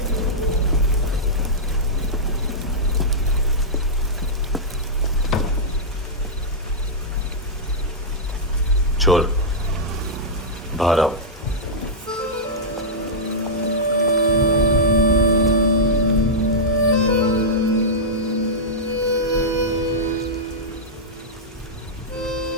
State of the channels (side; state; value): both; normal; correlation -0.11